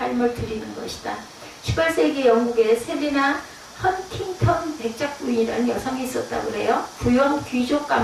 드리는 것이다. 18세기 영국의 셀리나 헌팅턴 백작 부인이라는 여성이 있었다고 그래요. 부유한 귀족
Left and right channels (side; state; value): both; identical; correlation 1.00